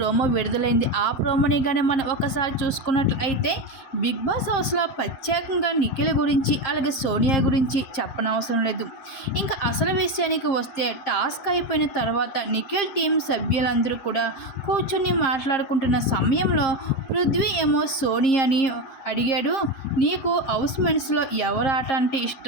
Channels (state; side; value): late; right; 7.9 ms